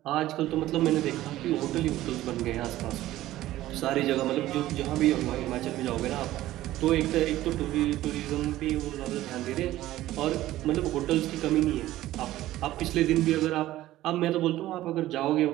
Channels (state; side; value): quieter; left; 15.1 dB